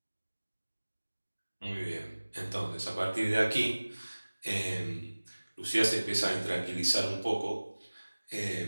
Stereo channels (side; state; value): both; inverted; correlation -1.00